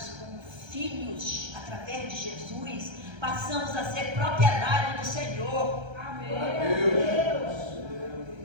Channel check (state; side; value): late; left; 1.3 ms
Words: como filhos através de Jesus, passamos a ser propriedade do Senhor.